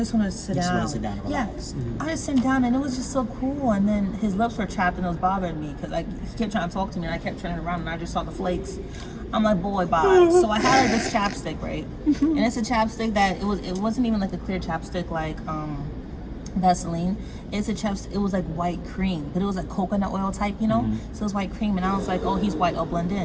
wanted to sit You down. just wanted to sit down and relax. Yeah, I just sat down, and it was just so cool. And then his lips were chapped, and it was bothering me because he kept trying to talk to me, and I kept turning around, and I just saw the flakes. I'm like, boy, bye. So I had like this chapstick, right? And it's a chapstick that it wasn't even like a clear chapstick like Vaseline. It's a chapstick. It was like white cream, but it was like coconut oil type, So it was white cream, and I was like, oh, he's white, I'll blend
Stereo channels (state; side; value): identical; both; correlation 1.00